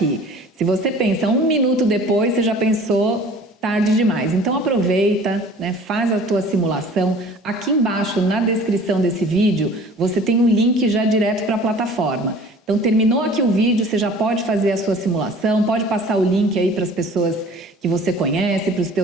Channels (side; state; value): both; normal; correlation 0.47